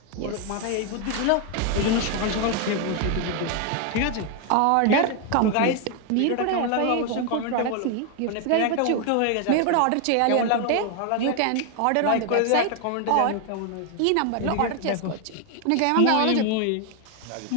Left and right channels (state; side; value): different; both; correlation 0.01